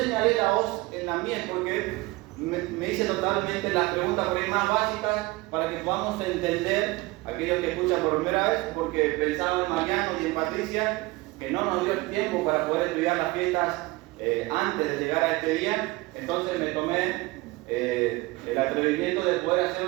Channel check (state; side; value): quieter; left; 21.7 dB